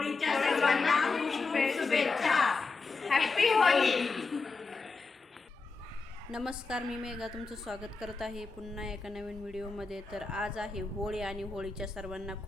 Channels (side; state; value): right; quieter; 4.1 dB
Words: सर्वांना शुभेच्छा. हॅपी होळी. नमस्कार, मी मेघा तुमचं स्वागत करत आहे पुन्हा एका नवीन व्हिडिओमध्ये. तर आज आहे होळी आणि होळीच्या सर्वांना